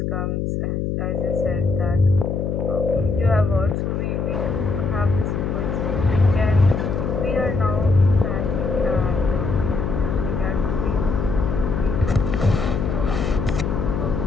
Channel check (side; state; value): left; noise; hum, 1 dB below the sound